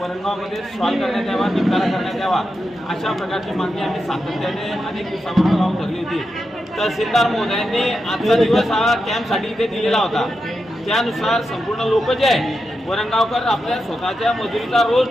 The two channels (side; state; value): both; normal; correlation 0.88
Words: सॉल्व्ह करण्यात यावा, निपटारा करण्यात यावा, अशा प्रकारची मागणी आम्ही सातत्याने अनेक दिवसापासून लावून धरली होती. तहसीलदार महोदयांनी आजचा दिवस हा कॅम्पसाठी इथे दिलेला होता. त्यानुसार संपूर्ण लोक जे आहे वरणगावकर आपल्या स्वतःच्या मजुरीचा रोज